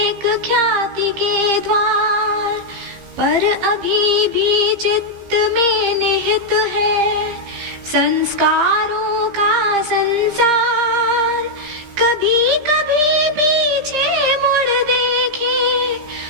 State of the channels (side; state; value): left; late; 15 ms